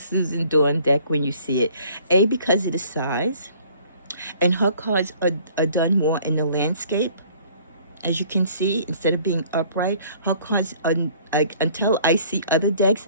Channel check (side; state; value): both; inverted; correlation -0.55